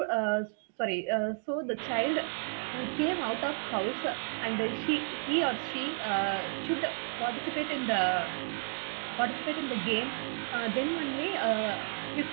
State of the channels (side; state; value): left; silent; 56 dB below the other